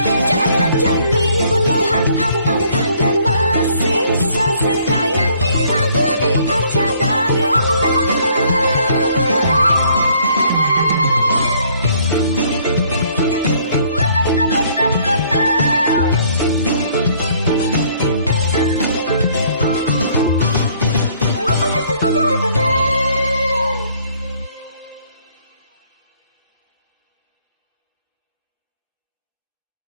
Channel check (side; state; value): both; inverted; correlation -0.62